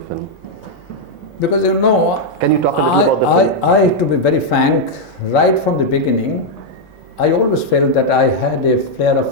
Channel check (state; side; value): normal; both; correlation -0.02